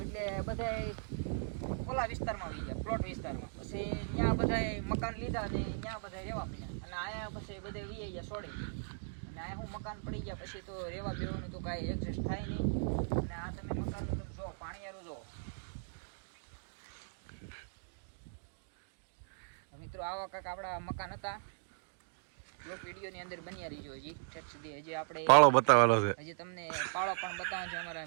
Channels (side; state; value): left; silent; digital silence